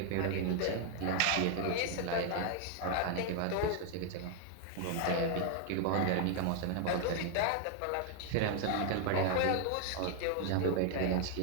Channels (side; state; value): both; different; correlation 0.00